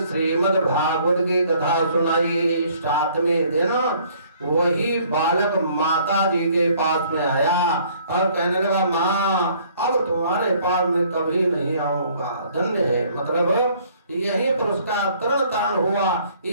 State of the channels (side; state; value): both; inverted; correlation -0.59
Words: श्रीमद् भागवत की कथा सुनाई। 7वें दिन वही बालक माता जी के पास में आया और कहने लगा, माँ अब तुम्हारे पास में कभी नहीं आऊंगा, धन्य है। मतलब यही पर उसका तरण तारण हुआ।